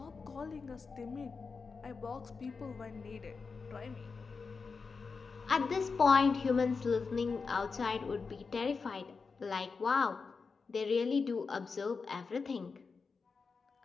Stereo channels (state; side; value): quieter; right; 4.8 dB